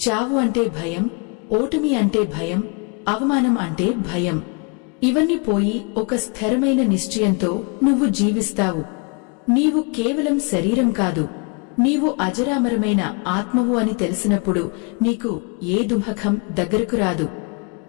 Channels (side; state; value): right; quieter; 33.3 dB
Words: అంటే భయం, ఓటమి అంటే భయం, అవమానం అంటే భయం. ఇవన్నీ పోయి ఒక స్థిరమైన నిశ్చయంతో నువ్వు జీవిస్తావు. నీవు కేవలం శరీరం కాదు, నీవు అజరామరమైన ఆత్మవు అని తెలిసినప్పుడు నీకు ఏ దుఃఖం దగ్గరకు రాదు.